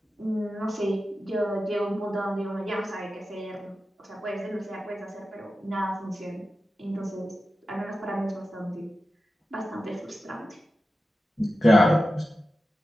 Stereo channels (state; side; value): normal; both; correlation 0.93